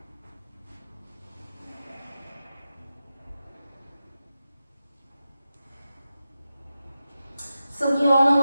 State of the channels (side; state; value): both; inverted; correlation -0.92